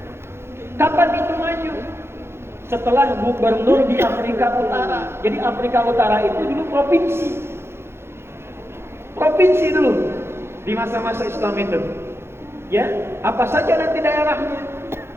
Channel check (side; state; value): left; late; 0.12 ms